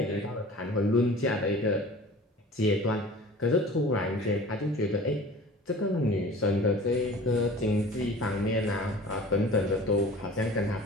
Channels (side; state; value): both; normal; correlation 0.42